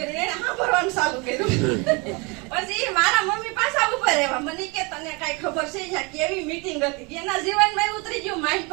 એને સાંભળવાનું ચાલુ કર્યું. પછી મારા મમ્મી પાછા ઉપર રહેવા. મને કે તને કઈ ખબર છે અહીંયા કેવી મીટિંગ હતી? એના જીવનમાં ઉતરી ગયું માઇન્ડ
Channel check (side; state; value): left; quieter; 29.1 dB